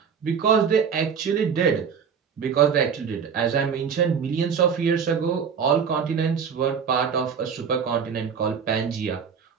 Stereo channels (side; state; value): left; quieter; 6.8 dB